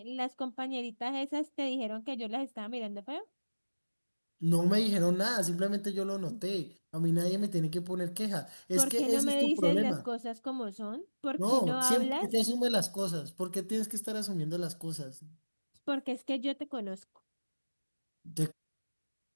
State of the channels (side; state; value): both; inverted; correlation -1.00